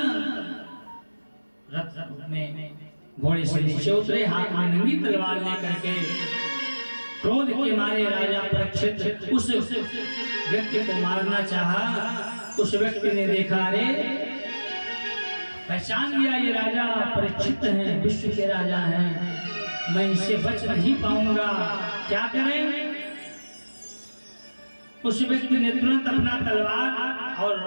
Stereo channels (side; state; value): both; inverted; correlation -1.00